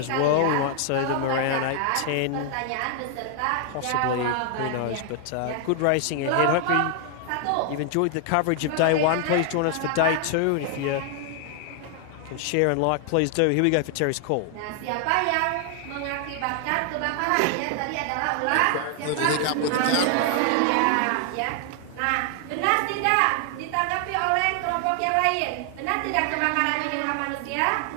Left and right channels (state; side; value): different; both; correlation 0.00